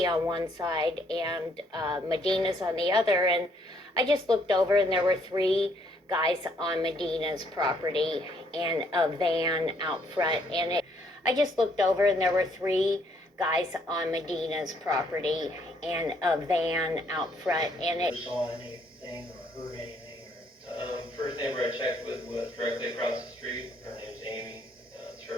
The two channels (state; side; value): normal; both; correlation 0.68